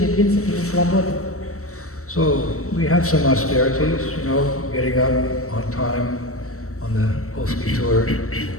принципами свободы. So we have some austerities, getting up on time on the PolishTour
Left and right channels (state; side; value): late; right; 0.64 ms